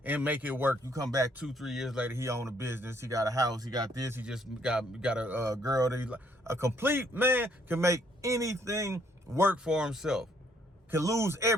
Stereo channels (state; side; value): normal; both; correlation 0.67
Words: and make it work. You come back 2-3 years later, he own a business, he got a house, he got this, he just got a girl that he like. A complete man can make anything work for himself, can lose